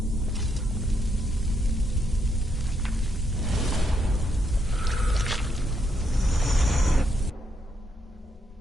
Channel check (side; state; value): both; normal; correlation 0.77